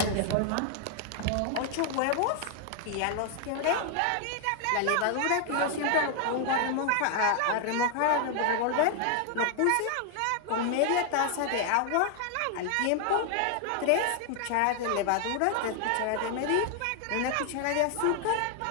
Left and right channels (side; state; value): both; different; correlation 0.00